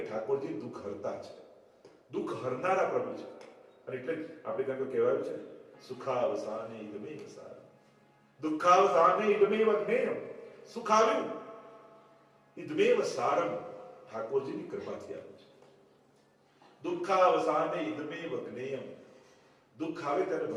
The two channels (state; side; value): identical; both; correlation 1.00